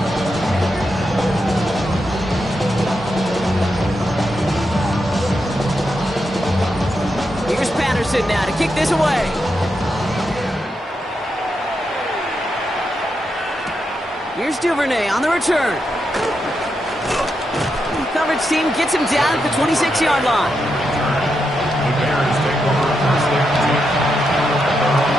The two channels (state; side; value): normal; both; correlation 0.84